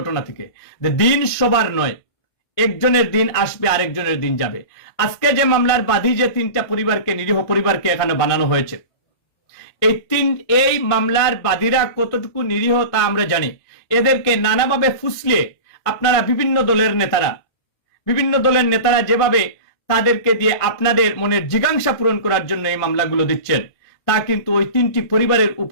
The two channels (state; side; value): late; right; 1.6 ms